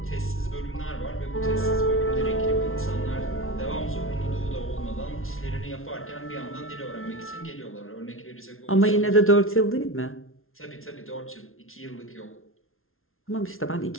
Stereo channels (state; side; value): late; right; 0.61 ms